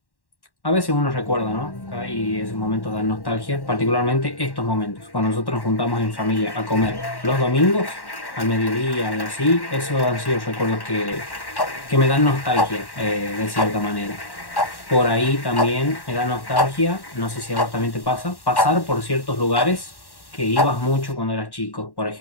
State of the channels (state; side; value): late; right; 1.1 ms